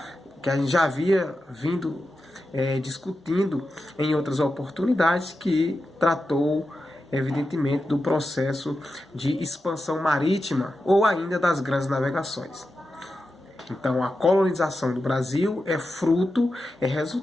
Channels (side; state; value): both; normal; correlation 0.90